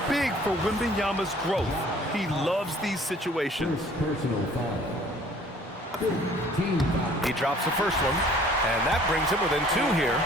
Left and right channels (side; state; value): both; normal; correlation 0.54